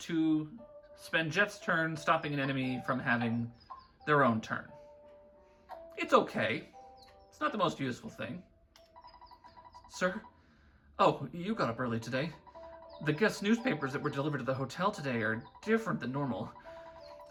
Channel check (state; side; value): identical; both; correlation 1.00